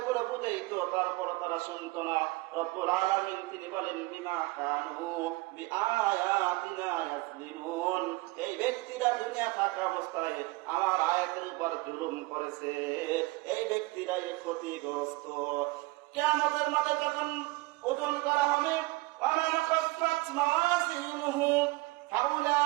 বুঝাইতো তারপর তারা শুনতো না। রব্বুল আলামিন তিনি বলেন বিমা কানু বিআয়াতিনা ইয়াজলিমুন, এই ব্যক্তিরা দুনিয়া থাকা অবস্থায় আমার আয়াতের উপর জুলুম করেছে, এই ব্যক্তিরাই ক্ষতিগ্রস্ত। কিয়ামতের মাঠে যখন ওজন করা হবে ওয়ামান খাফফাত মাওয়াজিনুহু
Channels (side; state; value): left; quieter; 22.3 dB